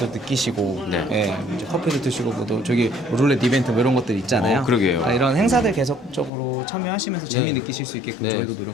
느끼시고 이제 커피도 드시고 뭐또 저기 룰렛 이벤트 뭐 이런 것들 있잖아요. 그러게요. 그러니까 이런 행사들 계속적으로 참여하시면서 재미 느끼실 수 있게끔 저희도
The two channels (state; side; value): drops out; right; at 6.3 s